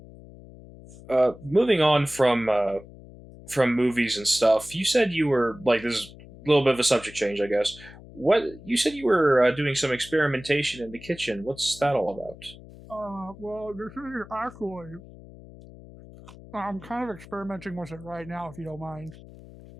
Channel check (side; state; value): left; noise; hum, 19 dB below the sound